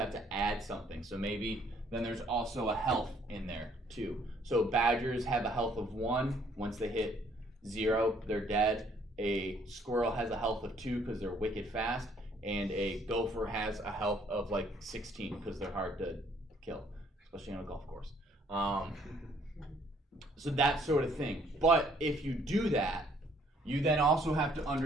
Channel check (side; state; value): both; normal; correlation 0.63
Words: to add something. So maybe then there's also a health in there too. So badgers have a health of 1. Once they hit 0, they're dead. A squirrel has a health of 2 because they're wicked fast. And a gopher has a health of like 16 because they're hard to kill, especially on a golf course. So that sort of thing. But if you do that, you then also have to